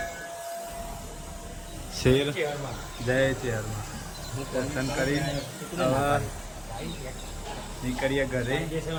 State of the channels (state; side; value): identical; both; correlation 1.00